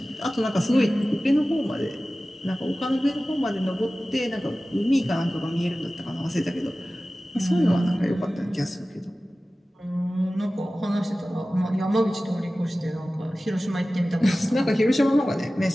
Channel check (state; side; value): normal; both; correlation 0.96